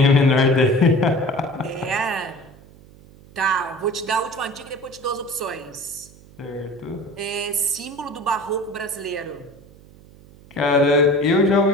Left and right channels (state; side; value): noise; right; hum, 23 dB below the sound